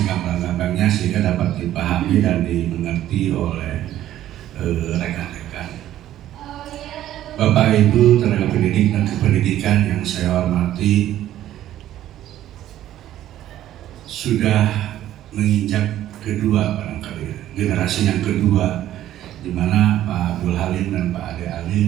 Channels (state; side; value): quieter; left; 12.7 dB